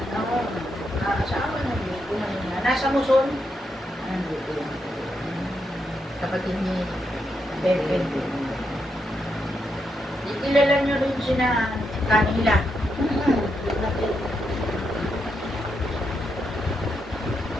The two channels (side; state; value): both; normal; correlation 0.82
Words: Ako, asawa na Diyos ko na niya. Nasa Muson. Kapatid ni Pepe. Kilala niyo rin sina Kanila.